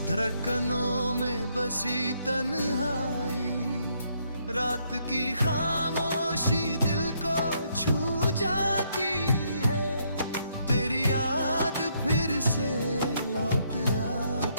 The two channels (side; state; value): both; inverted; correlation -0.73